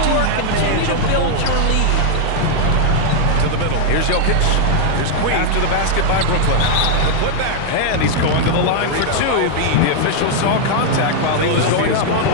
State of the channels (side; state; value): both; different; correlation 0.00